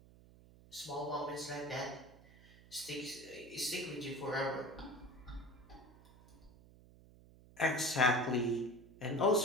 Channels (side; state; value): right; noise; hum, 23 dB below the sound